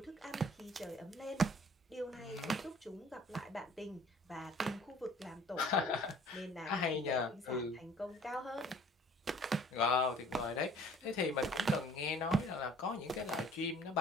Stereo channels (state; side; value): normal; both; correlation 0.53